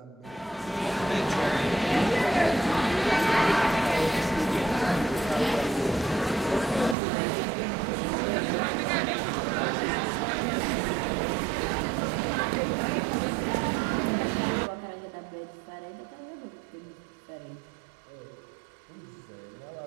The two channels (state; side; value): drops out; left; at 7.0 s